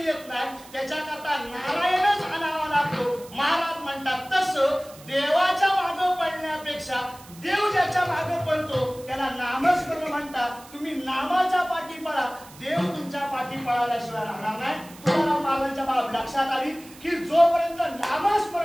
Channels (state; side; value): noise; right; hiss, 21 dB below the sound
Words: येत नाही त्याच्याकरता नारायणच आणावा लागतो. महाराज म्हणतात तसं देवाच्या मागे पडण्यापेक्षा देव ज्याच्या मागे पडतो त्याला नामस्मरण म्हणतात. तुम्ही नामाच्या पाठी पळा, देव तुमच्या पाठी पळाल्याशिवाय राहणार नाही. तुम्हाला महाराजांच्या बाब लक्षात आली की जोपर्यंत